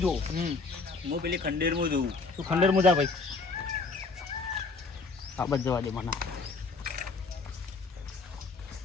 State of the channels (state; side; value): quieter; right; 4.1 dB